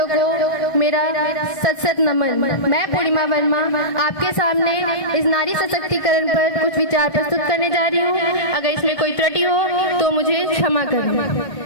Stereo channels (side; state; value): right; late; 1.4 ms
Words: को मेरा सत नमन। मैं पूर्णिमा वर्मा आपके सामने इस नारी सशक्तिकरण पर कुछ विचार प्रस्तुत करने जा रही हूँ। अगर इसमें कोई त्रुटि हो तो मुझे क्षमा करना।